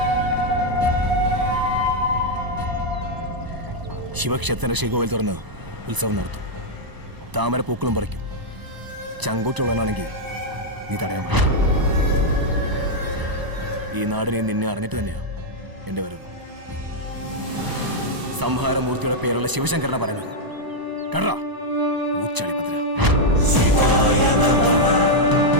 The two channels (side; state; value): left; late; 1.0 ms